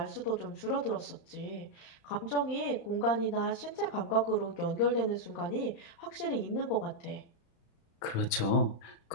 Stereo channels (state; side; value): late; right; 35 ms